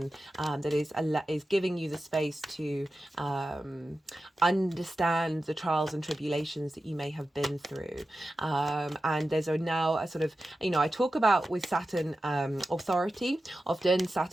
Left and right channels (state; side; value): normal; both; correlation 0.93